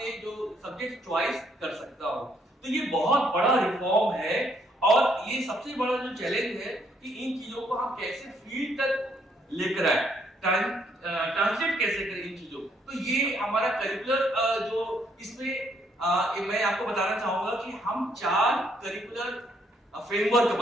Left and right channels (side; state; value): both; normal; correlation 0.70